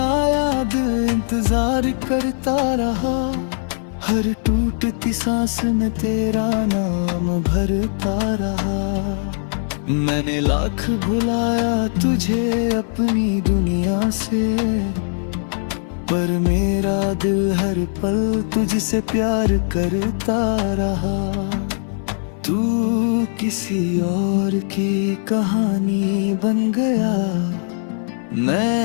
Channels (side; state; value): right; silent; 58 dB below the other